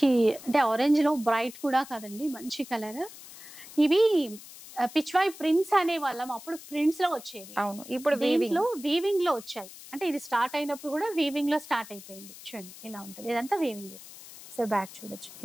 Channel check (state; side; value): noise; left; hiss, 17 dB below the sound